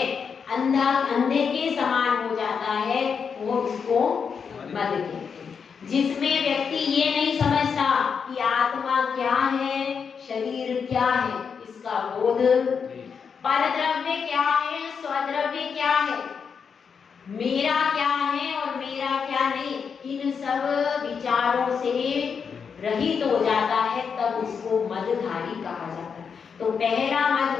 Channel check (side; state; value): right; quieter; 6.3 dB